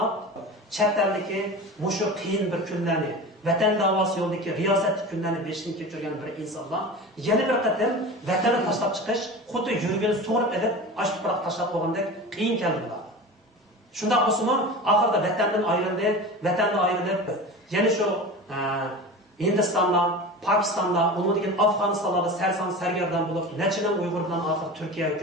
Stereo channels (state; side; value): normal; both; correlation 0.32